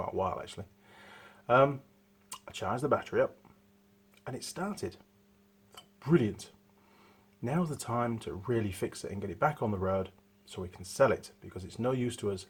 a while actually, I charged the battery up and it started. Brilliant. Now's the time to really fix it and get it back on the road so we can sell it, because it's no use to us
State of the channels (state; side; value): identical; both; correlation 1.00